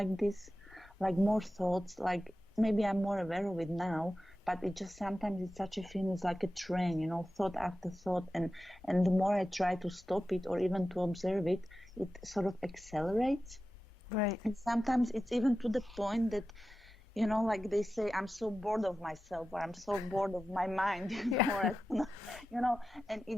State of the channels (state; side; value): normal; both; correlation 0.93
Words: this, like more thoughts, like maybe I'm more aware of it now, but it just sometimes it's such a feeling, it's like a train, thought after thought, and the more I try to stop it or even to observe it, it sort of accelerates. right. And sometimes it's even to the point that like they say, I'm so bored of myself, or I'm so bored of my mind, Yeah, or and